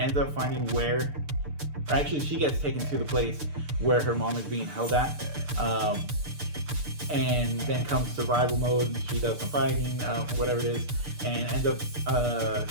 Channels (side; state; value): left; late; 6.7 ms